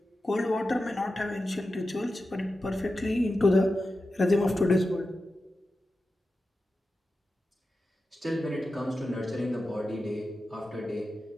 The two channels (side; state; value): both; normal; correlation 0.92